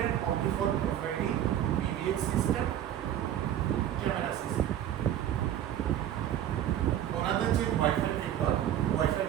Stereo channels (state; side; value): quieter; left; 11.1 dB